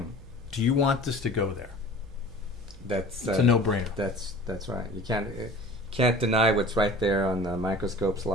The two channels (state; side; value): noise; right; hum, 18 dB below the sound